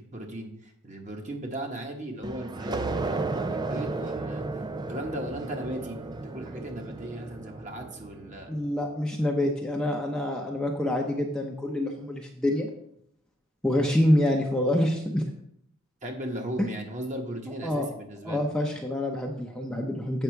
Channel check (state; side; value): normal; both; correlation 0.73